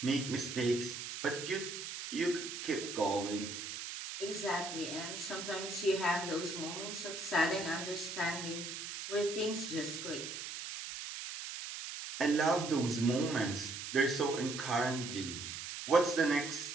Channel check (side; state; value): right; noise; hiss, 7 dB below the sound